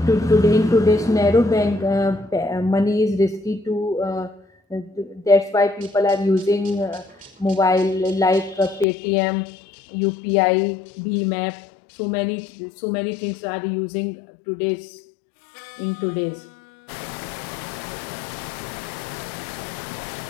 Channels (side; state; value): right; drops out; at 8.8 s